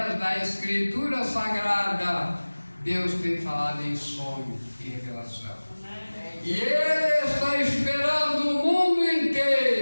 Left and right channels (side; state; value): both; inverted; correlation -1.00